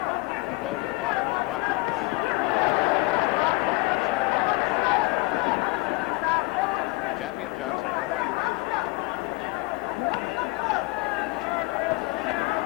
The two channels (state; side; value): quieter; right; 23.8 dB